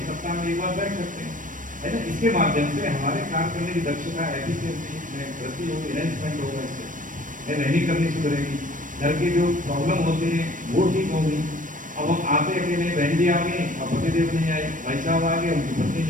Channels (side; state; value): left; late; 0.38 ms